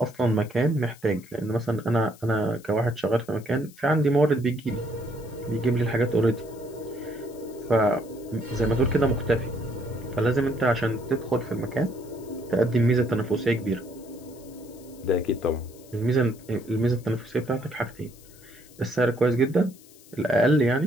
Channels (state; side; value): noise; left; hiss, 24 dB below the sound